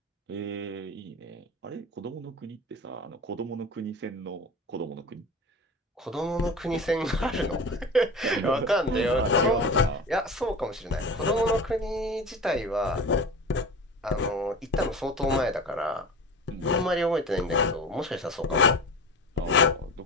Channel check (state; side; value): normal; both; correlation 0.32